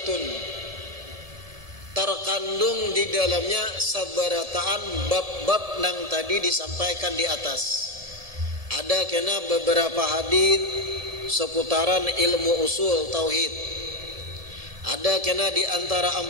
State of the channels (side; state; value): left; late; 1.7 ms